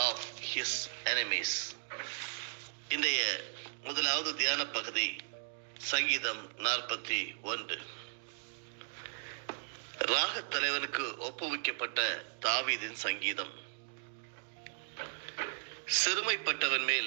of his enemies. இன்றைய முதலாவது தியான பகுதி சங்கீதம் 41. ராகத் தலைவனுக்கு ஒப்புவிக்கப்பட்ட தாவீதின் சங்கீதம். சிறுமைப்பட்டவன் மேல்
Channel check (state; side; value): silent; left; digital silence